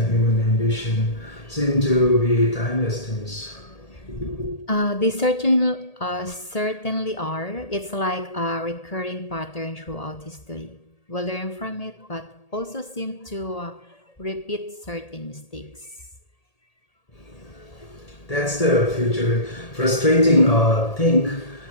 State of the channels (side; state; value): right; late; 1.8 ms